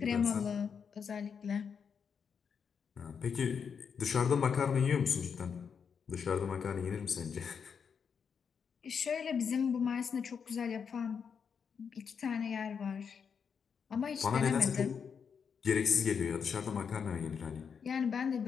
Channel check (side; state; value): right; quieter; 6.6 dB